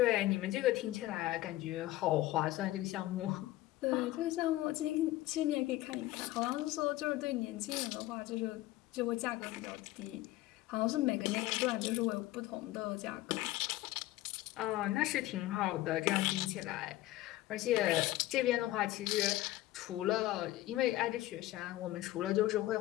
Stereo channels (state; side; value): quieter; right; 16.4 dB